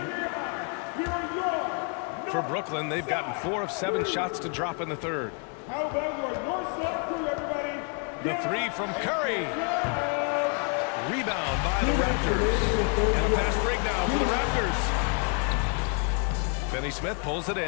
For Brooklyn, they've gotten 4 of 7 shots to drop in the third. How about your North Side crew, everybody? The 3 from Curry. Rebound by the Raptors. And a fast break now for the Raptors. Finney Smith pulls it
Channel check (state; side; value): quieter; right; 37.4 dB